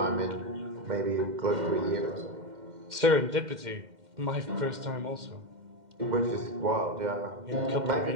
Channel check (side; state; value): left; late; 2.1 ms